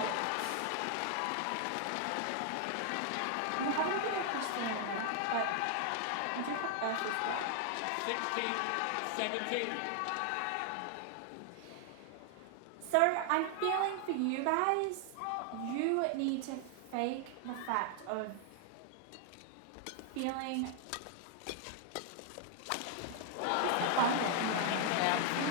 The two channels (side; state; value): both; different; correlation 0.00